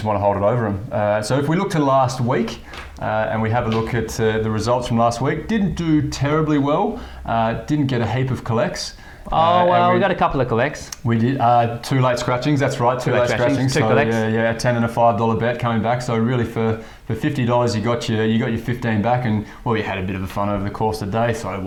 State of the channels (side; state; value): both; identical; correlation 1.00